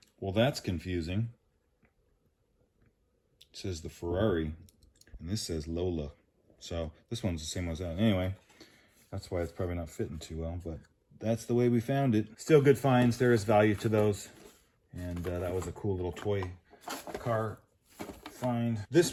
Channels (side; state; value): both; identical; correlation 1.00